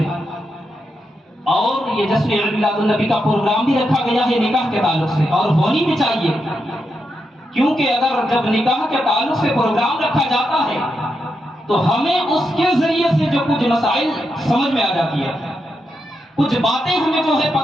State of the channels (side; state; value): both; normal; correlation 0.84